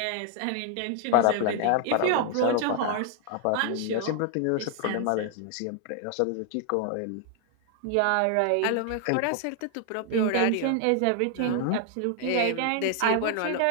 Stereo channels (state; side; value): different; both; correlation 0.00